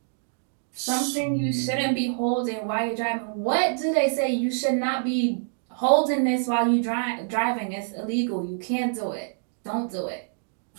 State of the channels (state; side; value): silent; left; digital silence